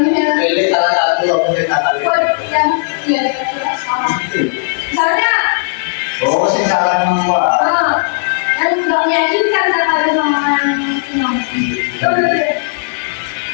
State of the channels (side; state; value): right; silent; digital silence